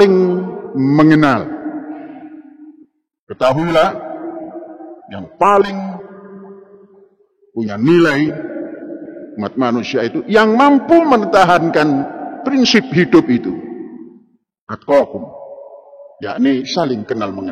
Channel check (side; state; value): both; identical; correlation 1.00